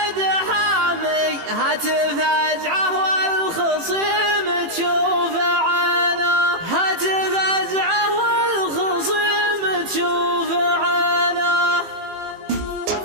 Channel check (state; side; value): late; left; 18 ms